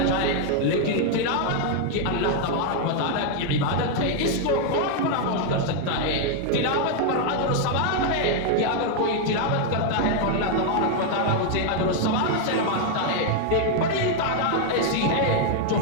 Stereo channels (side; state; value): both; different; correlation 0.00